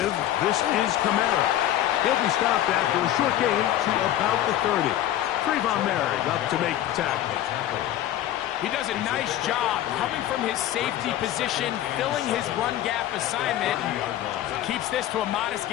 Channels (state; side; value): quieter; right; 12.6 dB